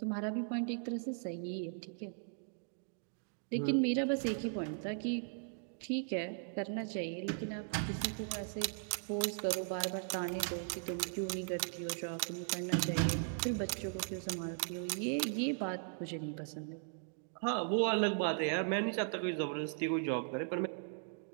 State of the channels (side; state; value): left; silent; digital silence